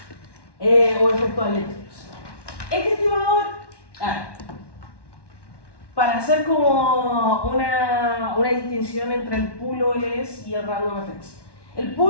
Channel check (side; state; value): right; late; 1.1 ms